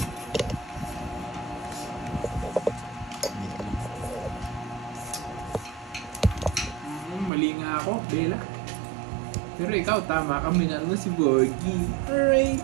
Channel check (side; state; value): left; drops out; at 7.3 s